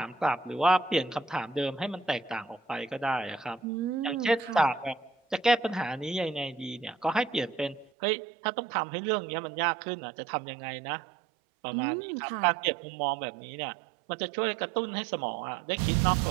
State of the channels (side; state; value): left; drops out; at 7.9 s